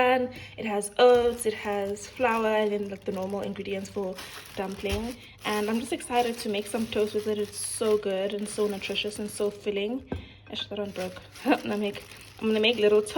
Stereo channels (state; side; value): identical; both; correlation 1.00